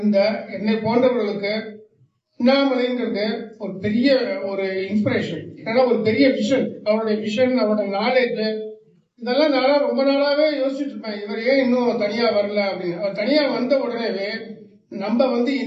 என்னை போன்றவர்களுக்கு அண்ணாமலைங்கிறது ஒரு பெரிய ஒரு இன்ஸ்பிரேஷன். ஏன்னா ஒரு பெரிய விஷன், அவருடைய விஷன், அவருடைய நாலேஜ், இதெல்லாம் நானா ரொம்ப நாளாவே யோசிச்சுட்டு இருப்பேன். இவர் ஏன் இன்னும் தனியா வரல அப்படின்னு. அவர் தனியா வந்த உடனேவே நம்ம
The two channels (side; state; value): both; identical; correlation 1.00